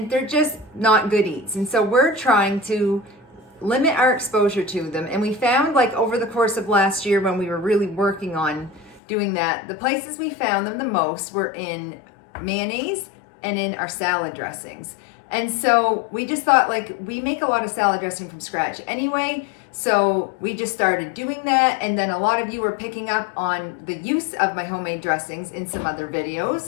they're just not good eats. And so we're trying to limit our exposure to them. And we found, like, over the course of last year when we were really working on doing that, the places we found them the most were in mayonnaise and in our salad dressings. And so we just thought, like, we make a lot of salad dressing from scratch anyway, so we just started doing that. And then a lot of you were picking up on the use of my homemade dressings in some other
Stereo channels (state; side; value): drops out; right; at 9.0 s